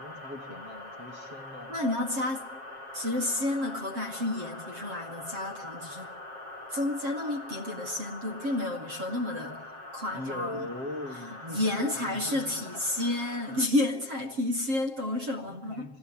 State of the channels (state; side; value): late; left; 7.5 ms